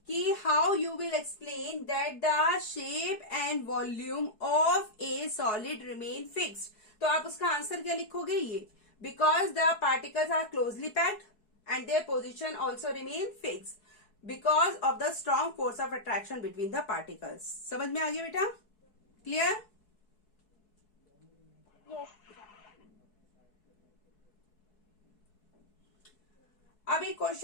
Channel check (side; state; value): right; late; 4.7 ms